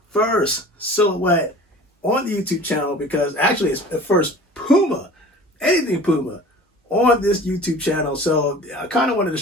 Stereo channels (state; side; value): normal; both; correlation 0.42